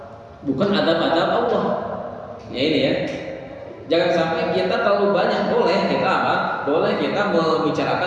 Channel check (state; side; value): identical; both; correlation 1.00